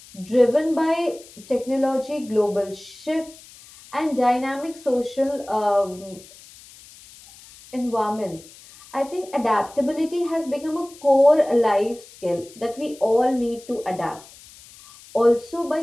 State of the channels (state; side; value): noise; left; hiss, 21 dB below the sound